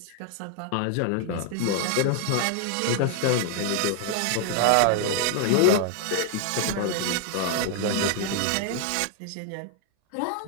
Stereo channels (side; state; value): both; different; correlation 0.00